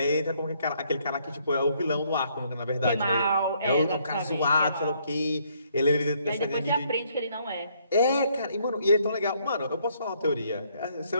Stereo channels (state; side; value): inverted; both; correlation -0.69